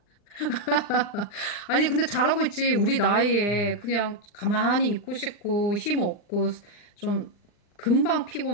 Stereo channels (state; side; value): late; right; 39 ms